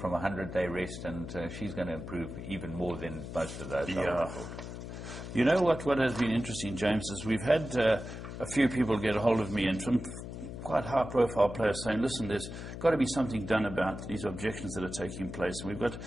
a 100-day rest, and she's going to improve even more than most of those. Yeah. You know what has been interesting, James, is we've had a few people get a hold of me, and some quite high-profile players saying, listen, there's got to be something done about these objections that are taking place. And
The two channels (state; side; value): noise; left; hum, 9 dB below the sound